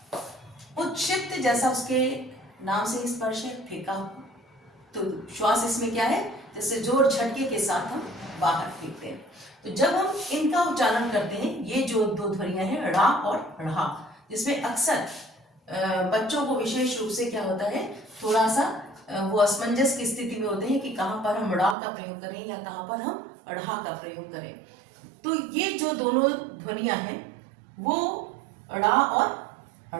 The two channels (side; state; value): left; drops out; at 21.8 s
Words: उत्क्षिप्त जैसा उसके नाम से स्पर्श है, फेंका, तो श्वास इसमें क्या है? जैसे जोर झटके के साथ हम बाहर फेंकते हैं। तो जब हम इनका उच्चारण करते हैं, ये जो दो ध्वनियां हैं ड़ा और ढ़ा, जिसमें अक्सर बच्चों को विशेष रूप से क्या होता है, थोड़ा सा वो असमंजस की स्थिति में होते हैं कि कहाँ पर हम ड़ा का प्रयोग करें या कहाँ पर हम ढ़ा का प्रयोग करें। तो ये जो दोनों ध्वनियां हैं वो ड़ा और